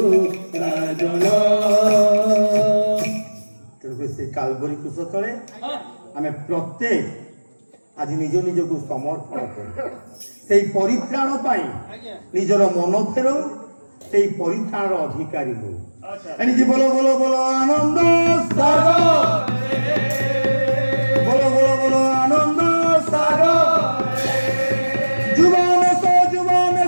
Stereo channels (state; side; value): inverted; both; correlation -1.00